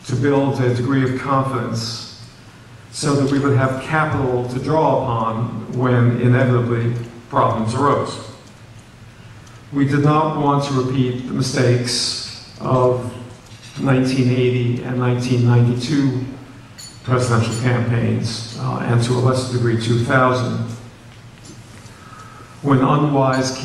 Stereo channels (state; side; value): identical; both; correlation 1.00